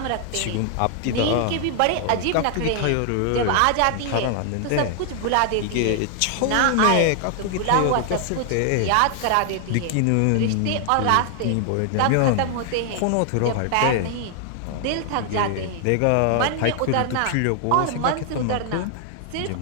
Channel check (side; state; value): both; different; correlation 0.00